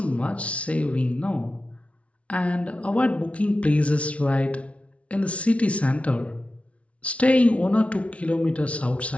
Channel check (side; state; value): right; late; 0.063 ms